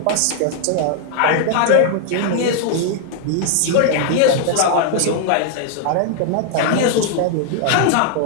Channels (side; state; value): both; different; correlation 0.00